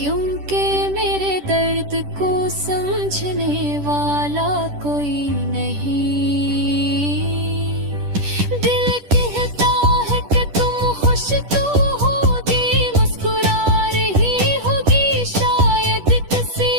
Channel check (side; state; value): left; late; 10 ms